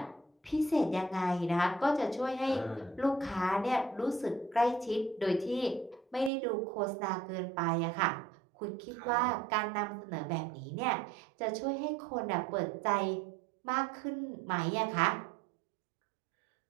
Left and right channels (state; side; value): drops out; left; at 6.3 s